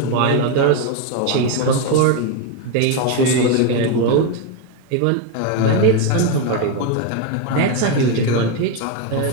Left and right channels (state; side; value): different; both; correlation 0.02